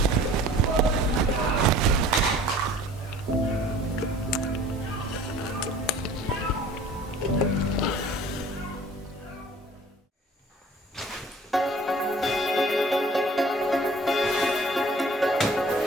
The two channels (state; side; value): normal; both; correlation 0.49